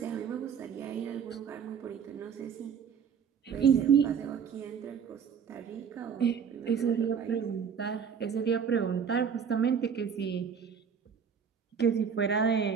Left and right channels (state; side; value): quieter; left; 7.1 dB